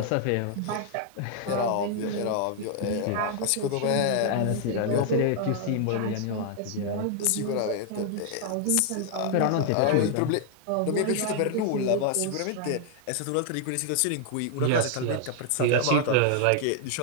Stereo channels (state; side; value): different; both; correlation 0.00